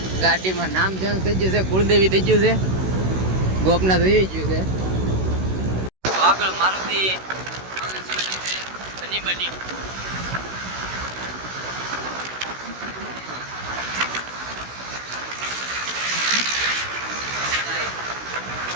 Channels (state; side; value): late; left; 16 ms